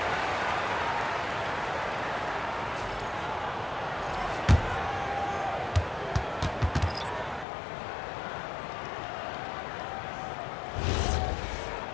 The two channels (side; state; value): right; drops out; at 7.5 s